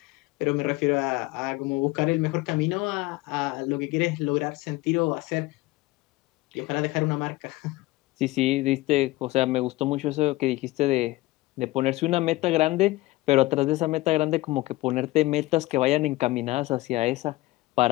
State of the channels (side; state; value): right; quieter; 19.5 dB